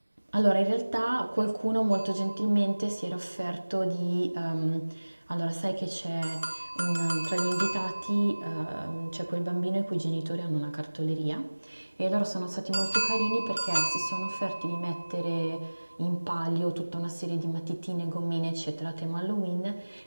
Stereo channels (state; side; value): inverted; both; correlation -1.00